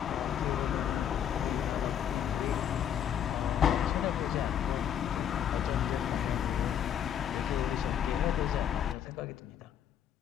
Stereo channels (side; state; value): right; quieter; 9.3 dB